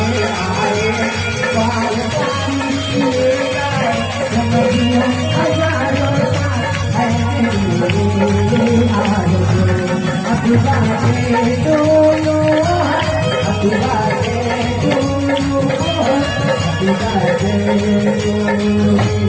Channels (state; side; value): identical; both; correlation 1.00